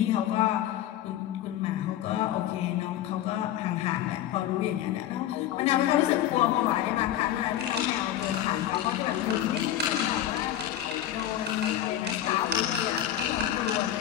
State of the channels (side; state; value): right; quieter; 11.9 dB